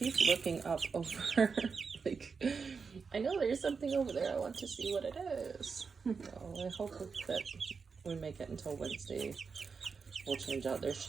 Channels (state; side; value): quieter; left; 5.3 dB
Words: looking up over. Like, I know there's something over there. I want to see what it is. So I hope that we make it until Wednesday. We'll change out their